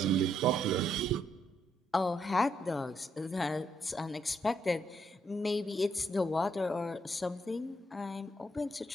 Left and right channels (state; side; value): normal; both; correlation 0.75